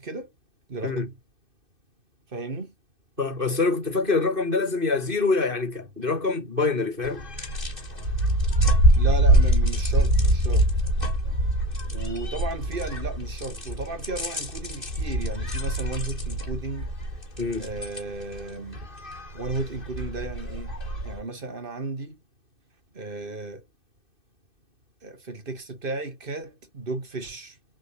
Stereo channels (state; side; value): late; left; 2.6 ms